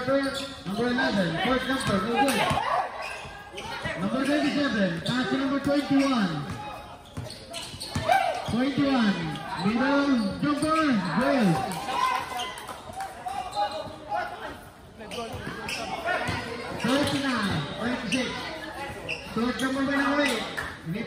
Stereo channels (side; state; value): both; identical; correlation 1.00